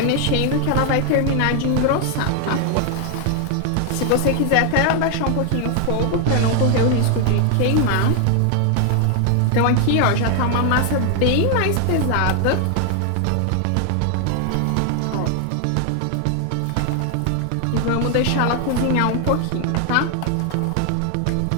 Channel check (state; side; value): different; both; correlation 0.00